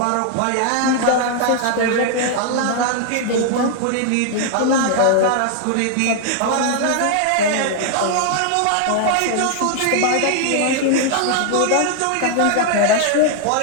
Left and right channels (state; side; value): different; both; correlation 0.00